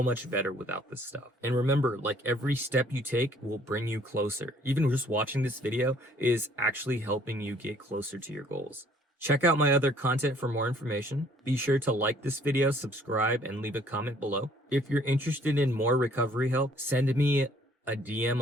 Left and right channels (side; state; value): both; normal; correlation 0.59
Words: much better without this stuff. And remember, like, every step you take will bring you closer. Even just watching this video is actually helping you get closer to your goals. Check out my other content for more information. Be sure to like this video, subscribe, and leave a comment below. If you're interested in more recovery help, send me a DM